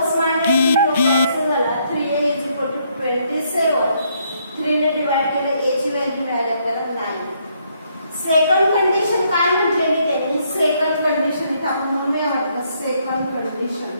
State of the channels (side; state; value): both; inverted; correlation -0.71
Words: मायनस कॅन्सल झाला 3a इज इक्वल टू 27 3 ने डिवाइड केलं a ची व्हॅल्यू मिळाली आपल्याला 9. सेकंड कंडिशन काय म्हटलेली त्यांनी सेकंड कंडिशन इथे आपण म्हणूया म्हटलं सेकंड कंडिशन